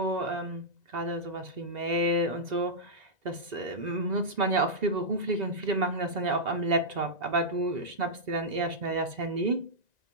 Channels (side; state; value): left; late; 2.0 ms